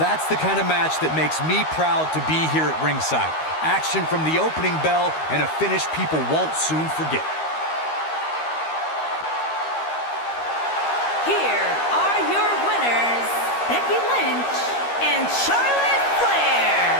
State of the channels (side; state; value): right; late; 13 ms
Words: the kind of match that makes me proud to be here at ringside. Action from the opening bell and a finish people won't soon forget. Here are your winners, Becky Lynch and Charlotte Flair.